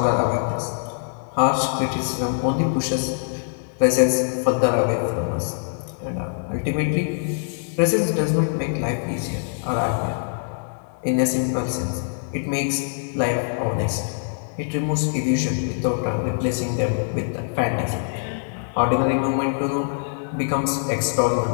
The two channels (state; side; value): silent; right; 63 dB below the other